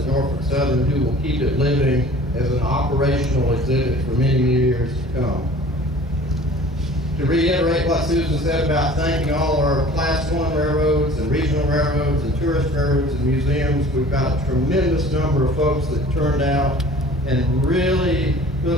Norfolk Southern who will keep it living as an operational exhibit for many years to come. To reiterate what Susan said about thanking all our Class 1 railroads and regional railroads and tourist railroads and museums, we've got a tremendous number of folks that turned out and really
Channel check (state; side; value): normal; both; correlation 0.47